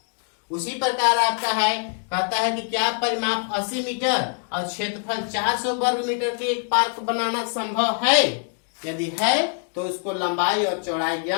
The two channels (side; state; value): right; silent; 56 dB below the other